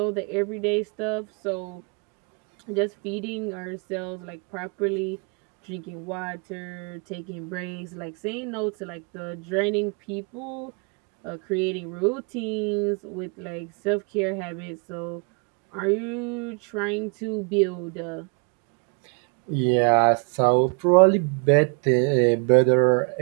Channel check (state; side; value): quieter; left; 36.8 dB